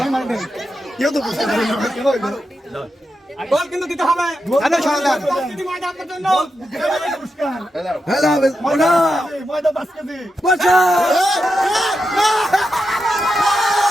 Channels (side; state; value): both; normal; correlation 0.87